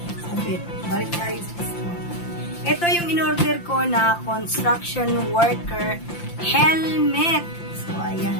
Sabit. Balik tayo sa gusto. Ito yung in-order ko na construction worker helmet. So,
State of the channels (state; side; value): late; right; 5.8 ms